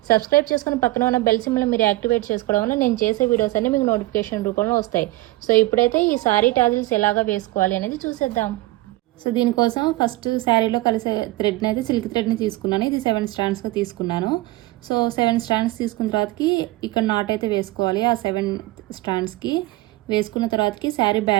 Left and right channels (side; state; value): left; quieter; 19.1 dB